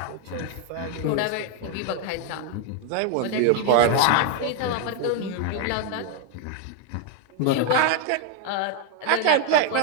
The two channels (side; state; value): both; different; correlation 0.01